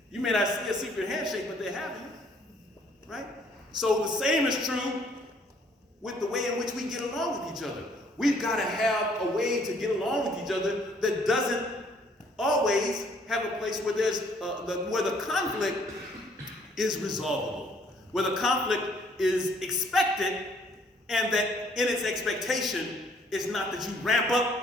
You may not see a secret handshake, but they have it, right? So the same is true with the way in which we get along with each other. We've got to have a way to get along with each other that doesn't always have a place where where the conflict is resolvable, where the conflict is expected, and that in its expectation is not that you ramp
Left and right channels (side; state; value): both; normal; correlation 0.62